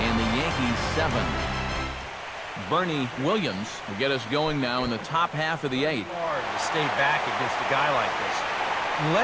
the Yankees 7. Bernie Williams will get us going now in the top half of the 8th. Hard to stay back against a guy like this.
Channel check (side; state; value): both; identical; correlation 1.00